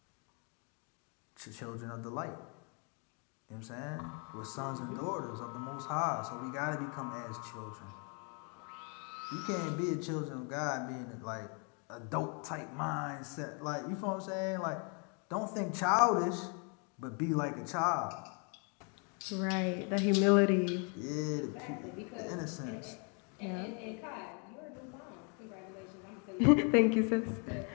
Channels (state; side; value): quieter; right; 37.2 dB